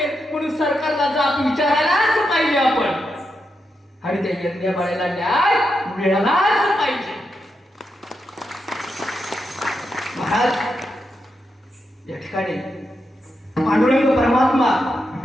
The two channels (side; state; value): both; normal; correlation 0.85